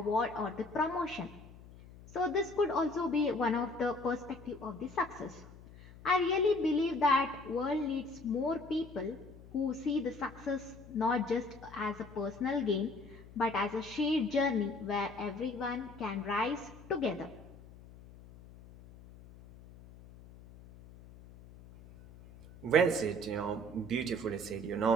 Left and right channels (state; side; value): noise; left; hum, 19 dB below the sound